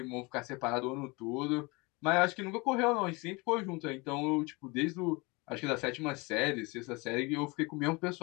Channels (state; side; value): quieter; right; 26.4 dB